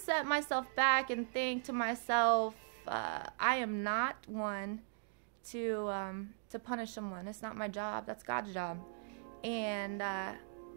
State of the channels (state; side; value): silent; left; digital silence